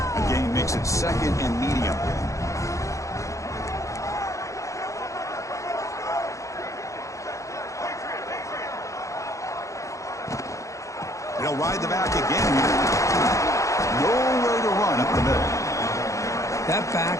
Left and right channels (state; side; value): late; right; 0.15 ms